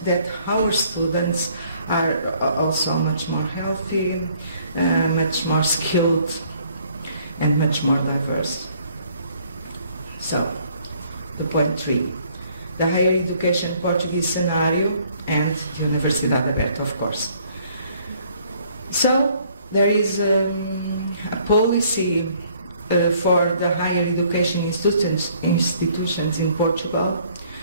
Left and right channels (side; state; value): both; inverted; correlation -0.62